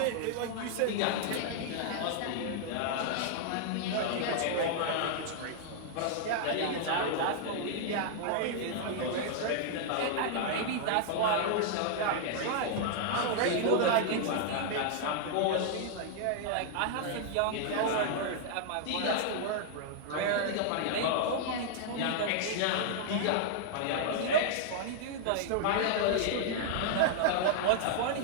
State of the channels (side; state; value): both; different; correlation -0.01